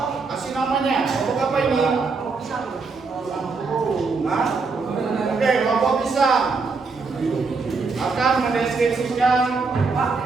kasih namanya. Kelompok apa ini? Nah, oke, kelompok pisang akan mendeskripsikan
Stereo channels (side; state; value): left; quieter; 4.4 dB